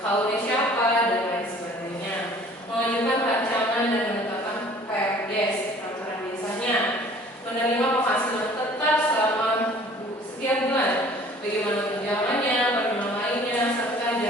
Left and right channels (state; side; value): normal; both; correlation 0.51